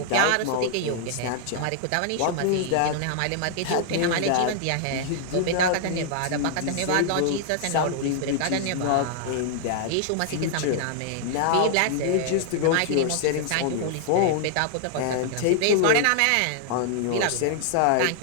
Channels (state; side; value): different; both; correlation -0.01